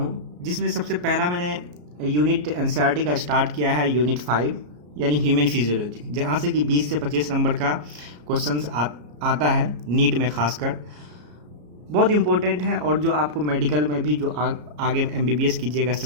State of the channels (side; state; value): left; late; 34 ms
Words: जिसमें सबसे पहला मैंने यूनिट एनसीईआरटी का स्टार्ट किया है, यूनिट 5 यानी ह्यूमन फिजियोलॉजी, जहाँ से कि 20 से 25 नंबर का क्वेश्चंस आता है नीट में खासकर। बहुत इंपॉर्टेंट है और जो आपको मेडिकल में भी जो आगे एमबीबीएस कीजिएगा